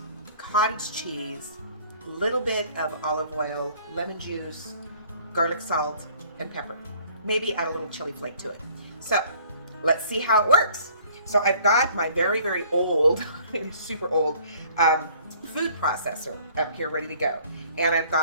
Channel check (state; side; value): inverted; both; correlation -0.55